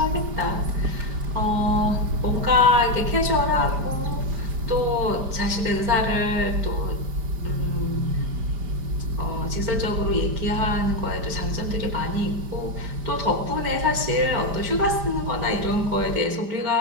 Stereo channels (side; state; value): left; late; 5.0 ms